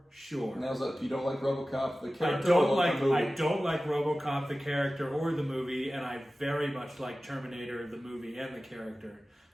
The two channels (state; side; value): normal; both; correlation 0.96